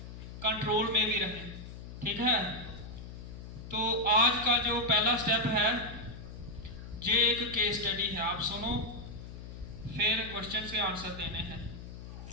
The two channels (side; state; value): left; noise; hum, 12 dB below the sound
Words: कंट्रोल में भी रहें। ठीक है, तो आज का जो पहला स्टेप है ये एक केस स्टडी है। आप सुनो, फिर क्वेश्चन के आंसर देने हैं।